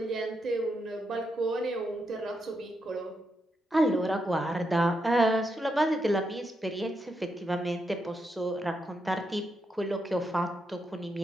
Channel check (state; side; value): normal; both; correlation 0.83